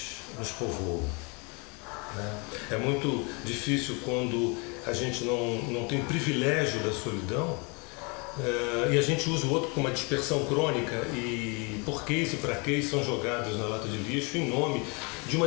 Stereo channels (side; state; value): right; quieter; 31.6 dB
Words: nos povoam, né? É muito difícil quando a gente não tem privilégio da solidão e a gente usa o outro com uma dispersão crônica e porquês e praquês são jogados na lata de lixo em nome de